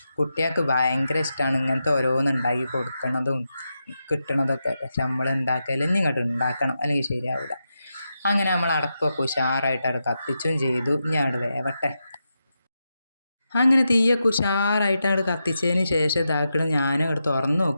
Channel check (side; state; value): both; inverted; correlation -0.88